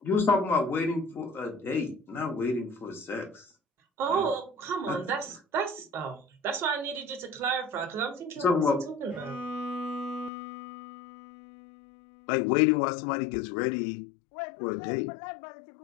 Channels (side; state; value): right; drops out; at 10.3 s